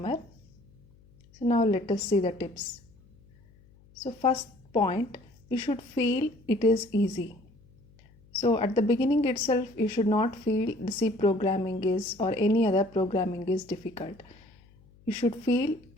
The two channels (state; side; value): noise; left; hum, 28 dB below the sound